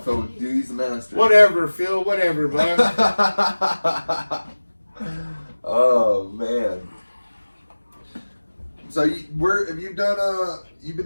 Phil what to do. He's the master. Whatever, Phil. Whatever, bud. Oh man. So have you done you've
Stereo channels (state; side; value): inverted; both; correlation -1.00